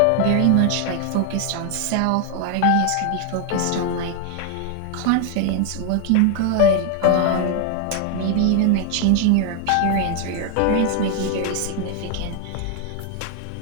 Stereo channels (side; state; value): both; different; correlation 0.01